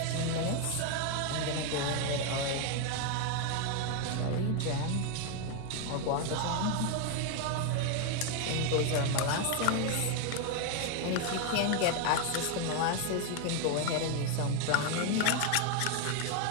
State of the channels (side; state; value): both; different; correlation 0.01